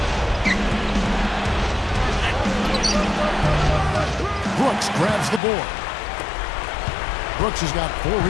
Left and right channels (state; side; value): drops out; right; at 5.4 s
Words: Brooks grabs the board. Brooks has got 4